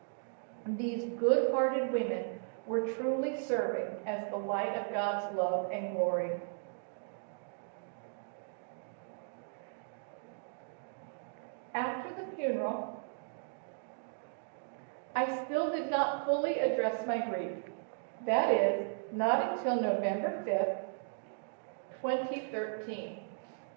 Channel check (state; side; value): silent; left; digital silence